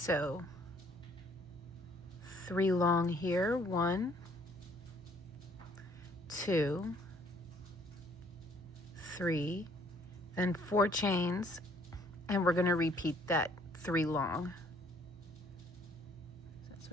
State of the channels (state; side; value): normal; both; correlation 0.62